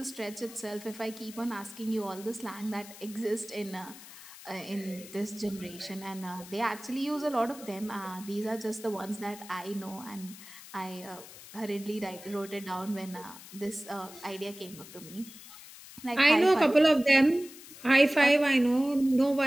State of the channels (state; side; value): noise; left; hiss, 17 dB below the sound